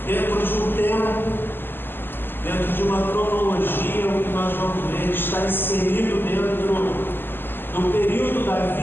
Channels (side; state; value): right; late; 0.097 ms